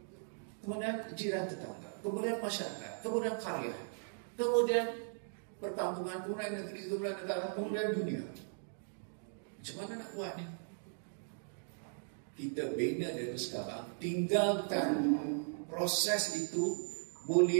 kemudian jiran tetangga, kemudian masyarakat, kemudian karya, kemudian perkampungan, kemudian negeri, kemudian negara, kemudian dunia. Macam mana nak buat ni? Kita bina dari sekarang, tinggalkan proses itu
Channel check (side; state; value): left; silent; digital silence